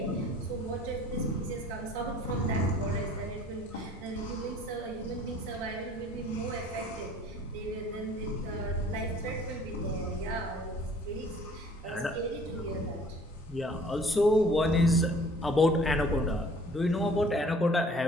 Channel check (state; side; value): normal; both; correlation 0.52